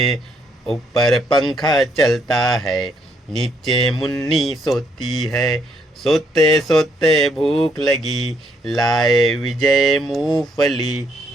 ऊपर पंखा चलता है, नीचे मुन्नी सोती है। सोते सोते भूख लगी, लाए विजय मूंगफली।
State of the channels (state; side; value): normal; both; correlation 0.71